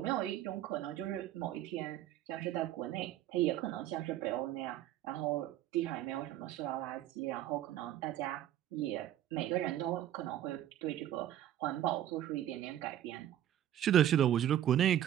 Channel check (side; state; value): left; quieter; 11.8 dB